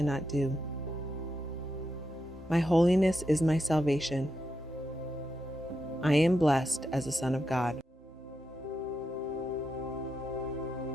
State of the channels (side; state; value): both; normal; correlation 0.85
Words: do. My holiness is my salvation. I am blessed as a son of God.